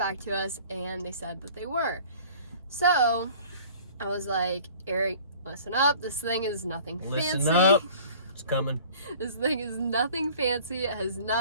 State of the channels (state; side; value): inverted; both; correlation -0.47